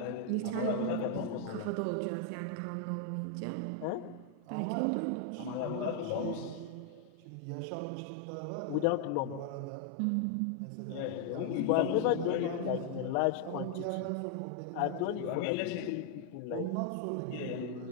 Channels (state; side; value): different; both; correlation 0.00